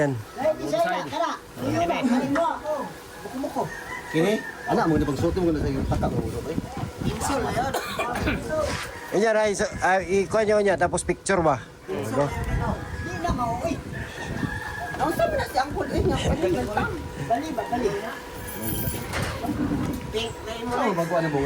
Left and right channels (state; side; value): identical; both; correlation 1.00